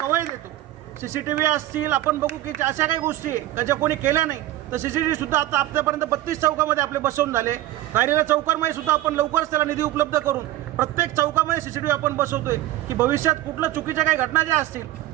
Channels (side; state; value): left; quieter; 15.2 dB